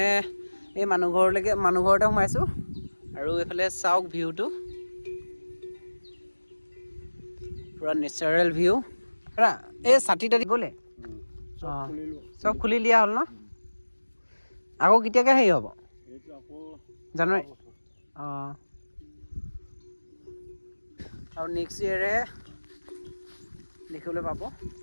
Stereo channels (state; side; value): inverted; both; correlation -1.00